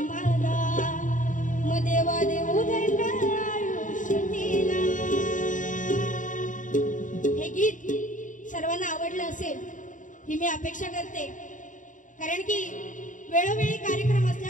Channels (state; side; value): late; right; 0.37 ms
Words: मग देवा देऊ दंडाला आयुष्य दिला. हे गीत सर्वांना आवडलं असेल ही मी अपेक्षा करते, कारण की वेळोवेळी कार्यक्रम